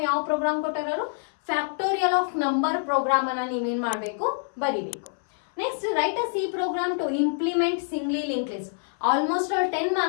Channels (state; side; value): silent; right; 61 dB below the other